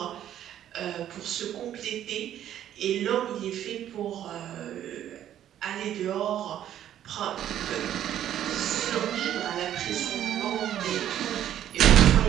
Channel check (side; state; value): left; quieter; 11.1 dB